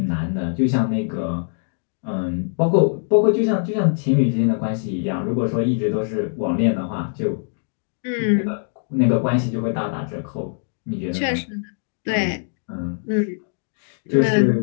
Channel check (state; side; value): silent; right; 64 dB below the other